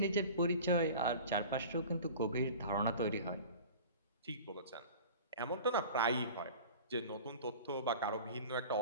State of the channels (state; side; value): inverted; both; correlation -0.39